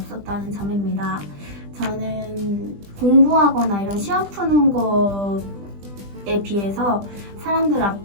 점입니다. 저는 공부하거나 이런 시험 푸는 것에 비해서 사람들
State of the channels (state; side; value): late; left; 20 ms